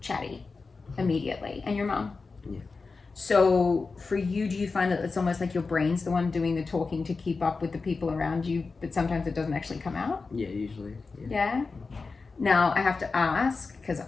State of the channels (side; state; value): right; quieter; 4.2 dB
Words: chatty immediately, and your mom. Yeah. So for you, do you find that it's almost like your brain's the one doing the talking to keep up with the people around you, but sometimes it doesn't actually come out? Yeah, usually. Yeah? Now, I have to ask, because